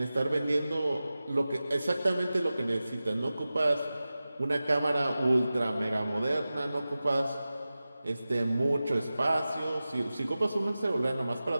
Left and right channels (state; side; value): inverted; both; correlation -0.95